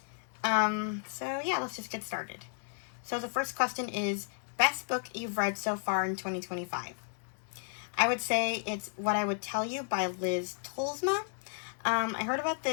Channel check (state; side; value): silent; right; 56 dB below the other